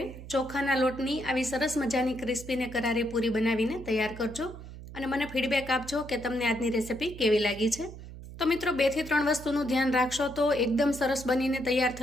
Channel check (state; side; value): noise; right; hum, 13 dB below the sound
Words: ચોખાના લોટની આવી સરસ મજાની ક્રિસ્પી ને કરારી પૂરી બનાવીને તૈયાર કરજો અને મને ફીડબેક આપજો કે તમને આજની રેસિપી કેવી લાગી છે. તો મિત્રો 2 થી 3 વસ્તુનું ધ્યાન રાખશો તો એકદમ સરસ બનીને તૈયાર